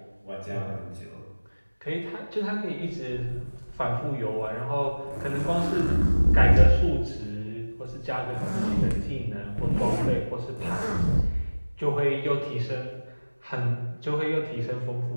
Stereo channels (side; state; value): both; inverted; correlation -1.00